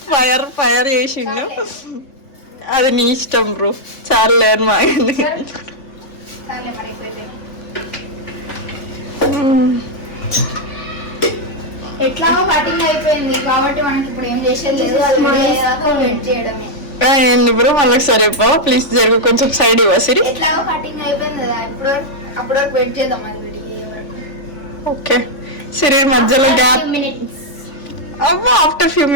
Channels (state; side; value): late; right; 3.5 ms